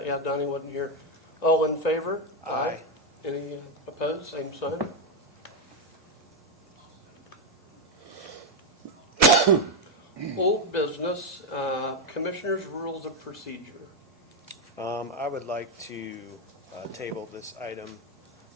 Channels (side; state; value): both; normal; correlation 0.04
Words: Yeah, Donnie wasn't here. All in favor? Aye. Any opposed? Same sign. Old business, Commissioners' Rules of Procedure. I would like to table this item.